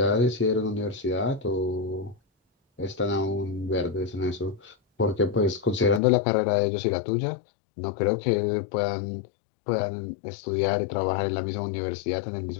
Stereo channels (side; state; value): right; drops out; at 6.0 s